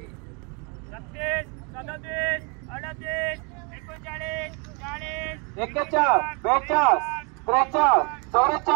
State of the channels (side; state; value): left; quieter; 33.2 dB